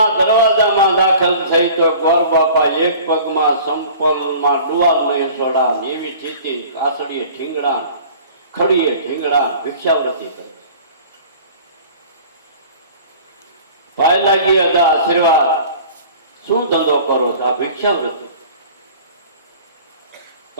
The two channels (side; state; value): both; inverted; correlation -0.45